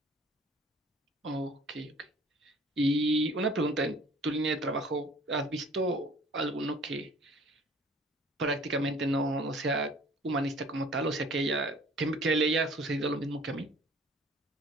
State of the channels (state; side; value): normal; both; correlation 0.51